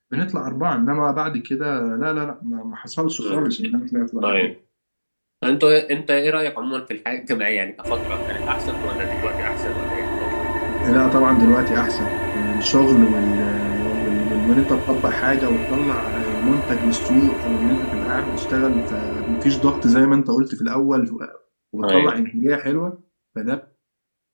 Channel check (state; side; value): inverted; both; correlation -1.00